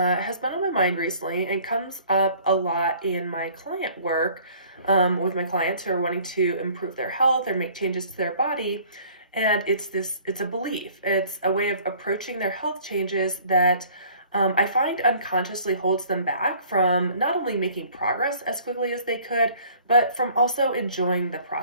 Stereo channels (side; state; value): both; inverted; correlation -0.53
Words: been on my mind recently and comes up a lot in my client work with my clients who are wanting to improve their health or make changes to their body. And it's a belief. It's a way of approaching their health changes that I find unconsciously holds them back from not only making progress as quickly as they could, but from also enjoying the